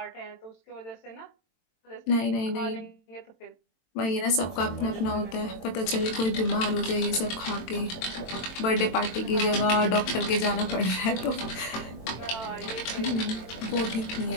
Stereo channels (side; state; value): right; late; 22 ms